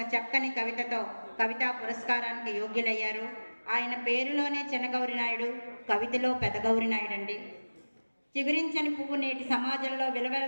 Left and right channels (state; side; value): inverted; both; correlation -1.00